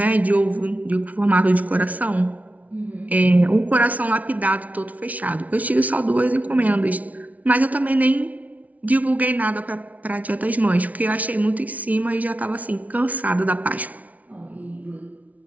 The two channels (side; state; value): left; late; 0.071 ms